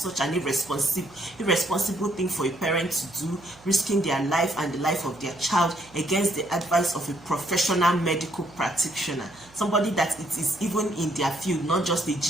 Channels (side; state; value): right; noise; hum, 26 dB below the sound